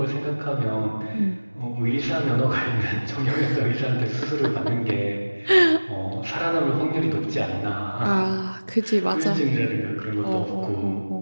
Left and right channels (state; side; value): inverted; both; correlation -1.00